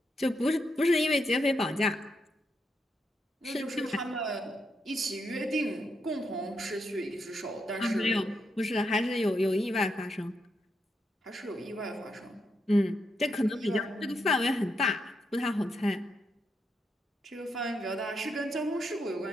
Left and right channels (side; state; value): both; normal; correlation 0.82